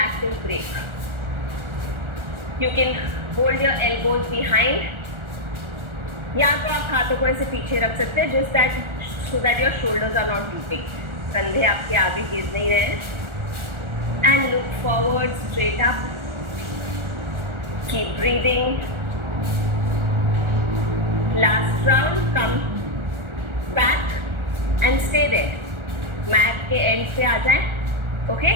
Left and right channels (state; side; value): late; left; 1.4 ms